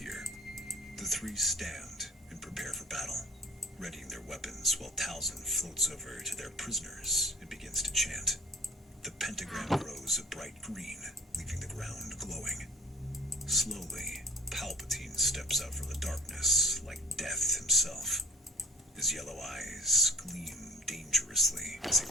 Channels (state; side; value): normal; both; correlation 0.50